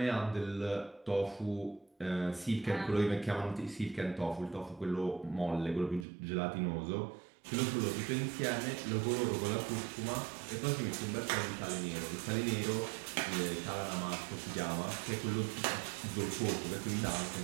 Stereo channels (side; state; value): left; drops out; at 6.1 s